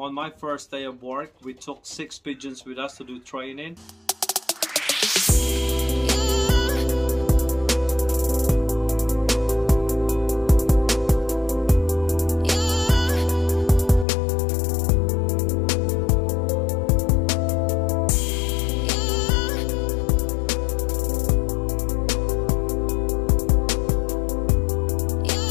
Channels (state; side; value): drops out; right; at 14.1 s